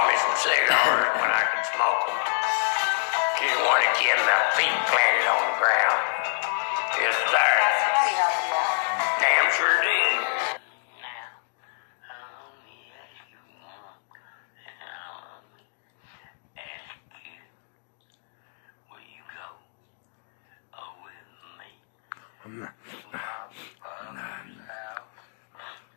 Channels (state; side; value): silent; right; digital silence